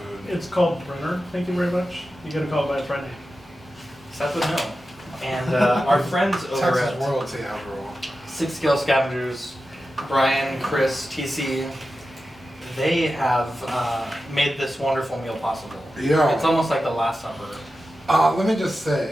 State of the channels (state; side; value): normal; both; correlation 0.92